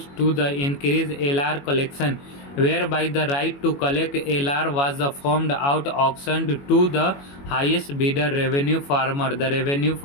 to the increase LR collection, whereby the right to collect LR was formed out auctioned to the highest bidder revenue farmer. The revenue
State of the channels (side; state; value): right; late; 21 ms